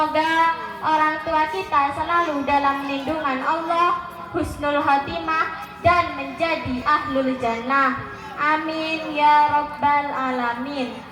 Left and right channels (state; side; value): identical; both; correlation 1.00